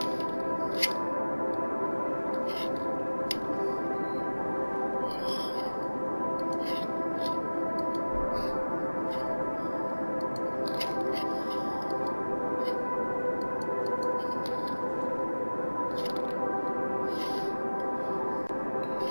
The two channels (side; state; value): both; inverted; correlation -1.00